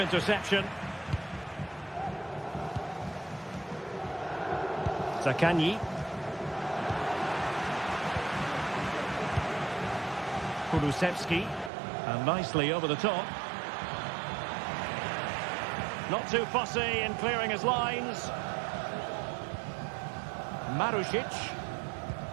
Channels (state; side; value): drops out; left; at 11.7 s